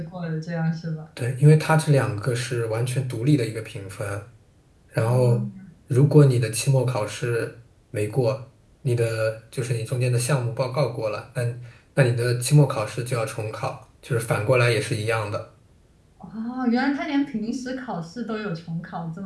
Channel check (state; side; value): identical; both; correlation 1.00